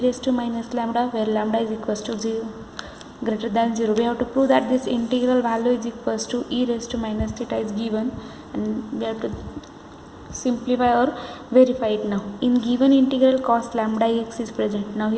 raised to minus lambda, where lambda is equals to 0 greater than 0. We have to prove that this integral value is equals to e raised to minus theta is given, and we have to simplify or verify it now. In given integral cos lambda x is present. Now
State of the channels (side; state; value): both; identical; correlation 1.00